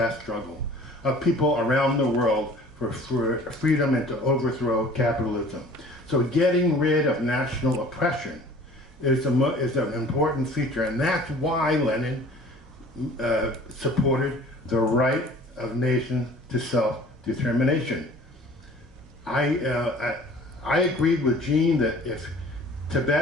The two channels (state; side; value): normal; both; correlation 0.47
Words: struggle of people around the world for freedom and to overthrow capitalism. So getting rid of national oppression is an important feature, and that's why Lenin supported the right of nations to self-determination. I agreed with Gene that if